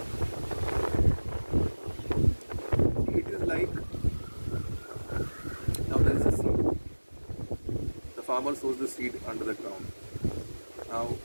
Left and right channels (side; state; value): both; inverted; correlation -1.00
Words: It is like, now there is a seed. The farmer sows the seed under the ground. Now,